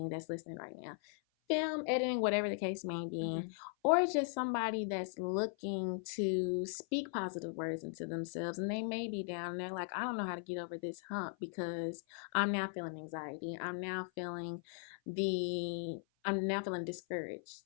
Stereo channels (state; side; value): silent; right; 52 dB below the other